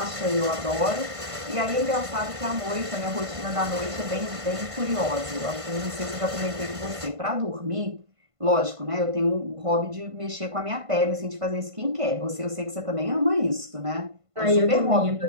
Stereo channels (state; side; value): late; left; 1.5 ms